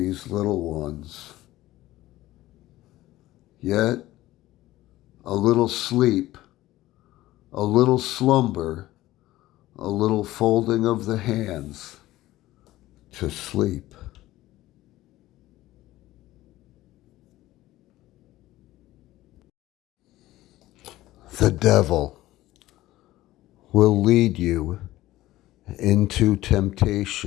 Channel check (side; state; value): right; quieter; 16.3 dB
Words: little ones. Yet a little sleep, a little slumber, a little folding of the hands to sleep. The devil will lead you into